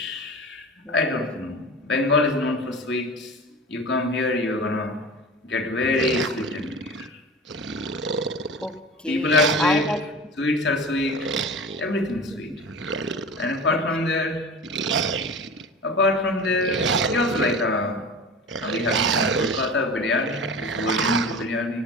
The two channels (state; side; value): normal; both; correlation 0.34